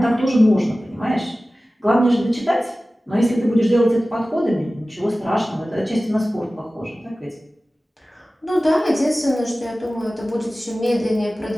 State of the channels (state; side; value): normal; both; correlation 0.96